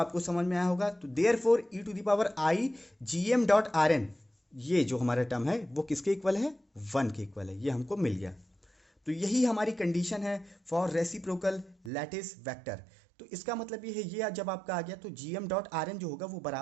समझ में आया होगा। तो therefore E to the power I G M dot R N, ये जो हमारा टर्म है वो किसके इक्वल है, वन के इक्वल है, ये हमको मिल गया। तो यही हमारी कंडीशन है फॉर रेसिप्रोकल लैटिस वेक्टर। तो इसका मतलब ये है, ये जब आपका आ गया तो G M dot R N जो होगा वो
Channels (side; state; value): left; drops out; at 11.9 s